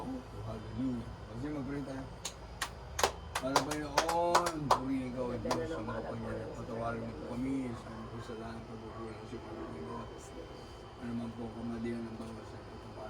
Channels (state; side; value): identical; both; correlation 1.00